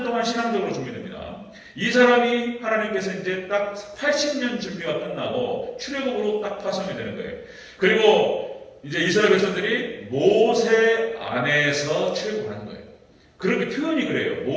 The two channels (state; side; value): identical; both; correlation 1.00